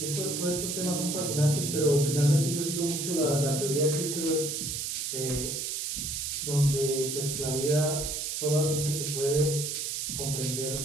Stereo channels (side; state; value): right; noise; hiss, 3 dB below the sound